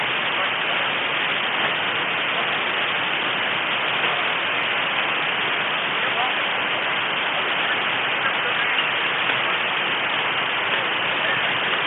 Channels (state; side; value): identical; both; correlation 1.00